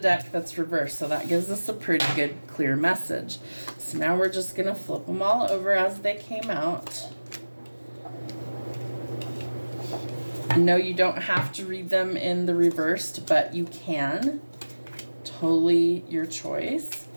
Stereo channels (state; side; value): inverted; both; correlation -1.00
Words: that's reversed. So that gives us a pretty good clear message. So now we're just going to flip them all over as they came out. No, you don't have to read them in the reversed, but you can. Totally your choice.